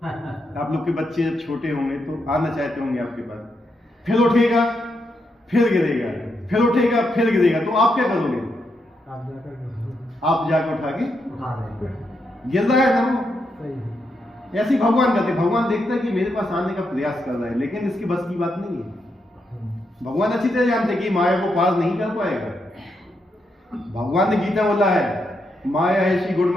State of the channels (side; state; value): both; normal; correlation 0.82